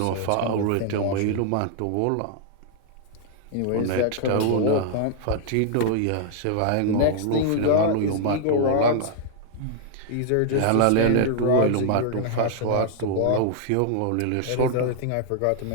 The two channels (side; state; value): both; different; correlation -0.01